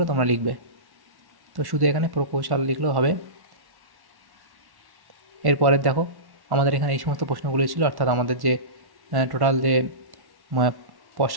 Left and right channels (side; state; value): left; late; 1.1 ms